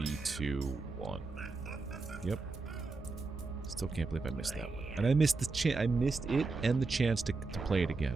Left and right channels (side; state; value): left; quieter; 3.9 dB